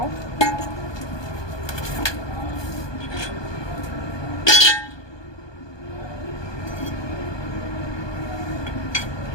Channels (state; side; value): late; right; 1.2 ms